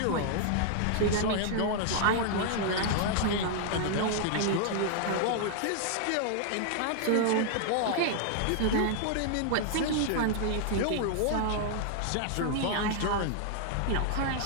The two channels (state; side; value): different; both; correlation -0.01